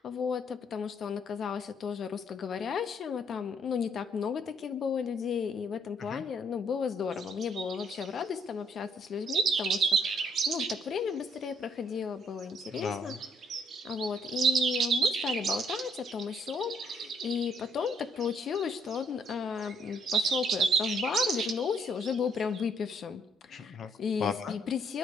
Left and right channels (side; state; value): both; normal; correlation 0.68